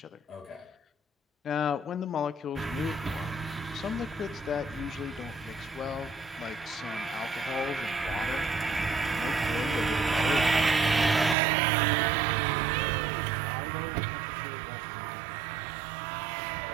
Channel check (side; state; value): left; drops out; at 11.4 s